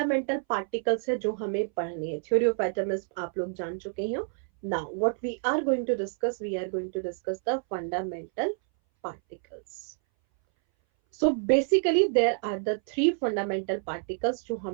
पार्टिकल्स है जो हमें पढ़ने हैं, थ्योरी ऑफ एटम्स आप लोग जान चुके हैं। Now what we are going to discuss, we are going to discuss the fundamental particles. So basically there are the three fundamental particles जो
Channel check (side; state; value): left; silent; 59 dB below the other